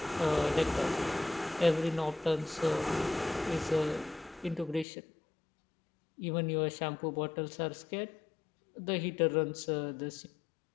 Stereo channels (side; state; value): right; drops out; at 4.9 s